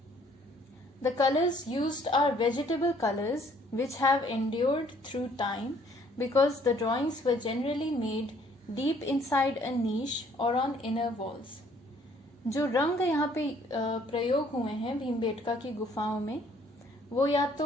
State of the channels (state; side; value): normal; both; correlation 0.61